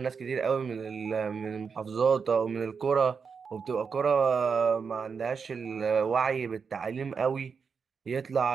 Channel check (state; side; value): quieter; left; 5.8 dB